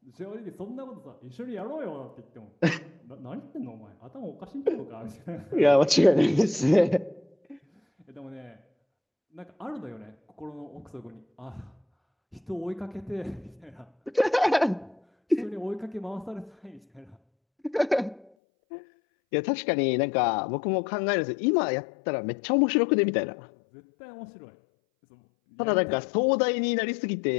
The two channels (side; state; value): right; drops out; at 18.3 s